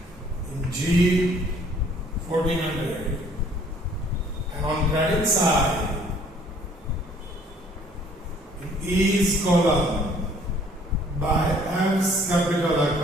in G 1400, and on credit side in E's column by F's capital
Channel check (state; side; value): normal; both; correlation 0.58